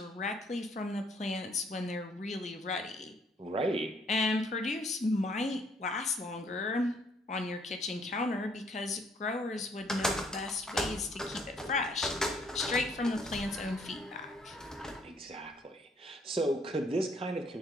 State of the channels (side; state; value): both; normal; correlation 0.65